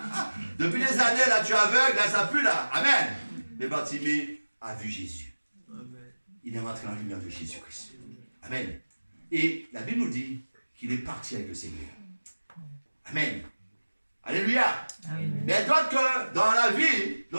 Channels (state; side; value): inverted; both; correlation -1.00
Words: Depuis des années, là, tu es aveugle, là, ça pue là. Amen. Mais Bartimée a vu Jésus. Il est rentré dans la lumière de Jésus-Christ. Amen. Et la Bible nous dit qu'il est parti avec le Seigneur. Amen. Alléluia. Amen. Mais d'autres que dans la vie,